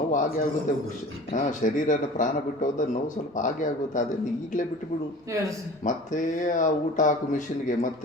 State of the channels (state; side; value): normal; both; correlation 0.41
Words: ಆಗೇ ಆಗುತ್ತೆ. ಶರೀರನ ಪ್ರಾಣ ಬಿಟ್ಟು ಹೋದ ನೋವು ಸ್ವಲ್ಪ ಆಗೇ ಆಗುತ್ತೆ. ಅದನ್ನು ಈಗಲೇ ಬಿಟ್ಟುಬಿಡು. ಮತ್ತೆ ಆ ಊಟ ಹಾಕು ಮಿಷಿನ್ಗೆ,